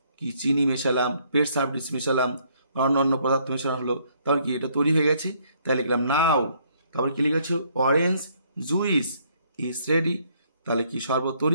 কি চিনি মেশালাম, পেট সার্ভিস মেশালাম, অন্য পদার্থ মেশানো হলো, তাহলে কি এটা তৈরি হয়ে গেছে, তাই লিখলাম নাও। তারপর কি লিখেছ, অরেঞ্জ জুইস ইজ রেডি, তাহলে কি শরবত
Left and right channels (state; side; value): inverted; both; correlation -0.67